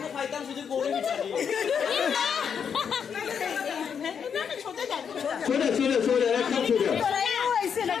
সোজা সোজা সোজা একদম সোজা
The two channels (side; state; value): right; quieter; 7.2 dB